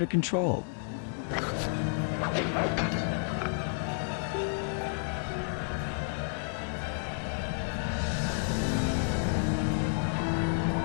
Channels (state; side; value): silent; right; digital silence